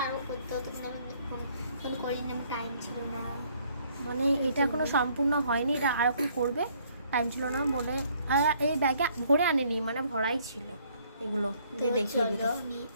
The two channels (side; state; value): both; inverted; correlation -0.64